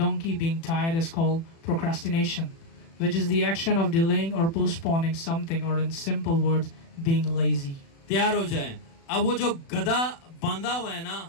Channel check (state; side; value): late; right; 36 ms